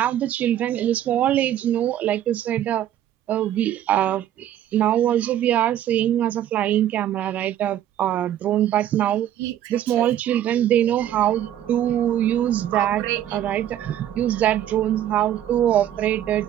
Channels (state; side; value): quieter; left; 11.5 dB